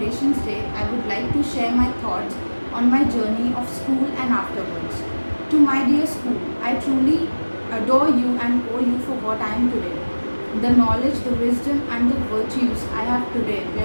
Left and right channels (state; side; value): inverted; both; correlation -1.00